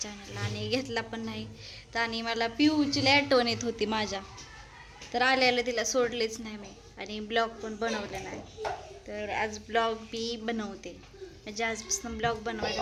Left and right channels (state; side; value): identical; both; correlation 1.00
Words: चॅनलला आणि घेतला पण नाही. तर आणि मला पिऊची लय आठवण येत होती माझ्या, तर आल्याला तिला सोडलेच नाही मी आणि ब्लॉग पण बनवले नाही. तर आज ब्लॉग मी बनवते, म्हणजे आजपासून ब्लॉग